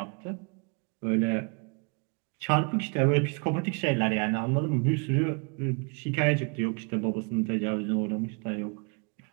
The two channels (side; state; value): left; quieter; 35.6 dB